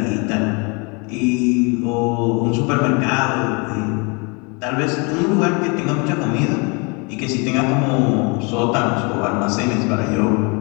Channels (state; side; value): quieter; right; 31.2 dB